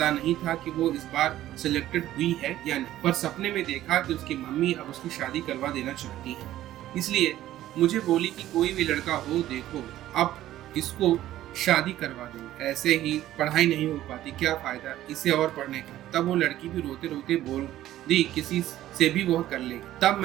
नहीं था कि वो इस बार सिलेक्टेड हुई है या नहीं, पर सपने में देखा कि उसकी मम्मी अब उसकी शादी करवा देना चाहती है। इसलिए मुझे बोली कि कोई भी लड़का हो देखो, अब इसको शादी करवा दो, ऐसे ही पढ़ाई नहीं हो पाती, क्या फायदा इसे और पढ़ने का। तब वो लड़की भी रोते रोते बोल दी किसी से भी वो कर लेगी। तब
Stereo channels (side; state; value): left; quieter; 13.7 dB